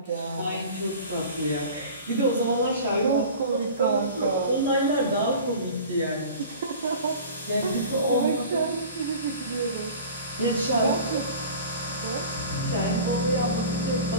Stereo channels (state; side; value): inverted; both; correlation -0.40